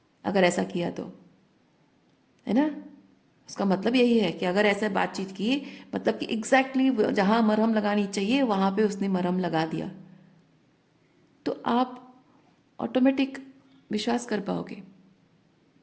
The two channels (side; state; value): both; identical; correlation 1.00